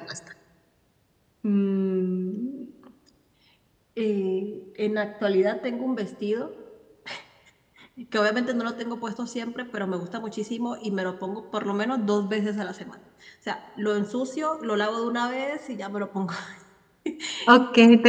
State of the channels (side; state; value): both; identical; correlation 1.00